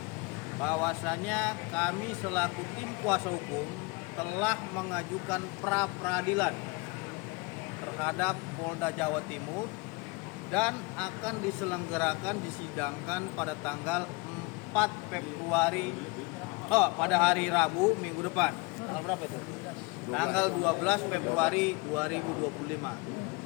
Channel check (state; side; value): quieter; right; 27.3 dB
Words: bahwasanya kami selaku tim kuasa hukum telah mengajukan pra peradilan terhadap Polda Jawa Timur dan akan diselenggarakan disidangkan pada tanggal 4 Februari pada hari Rabu minggu depan. Tanggal berapa itu? Tanggal 12 Februari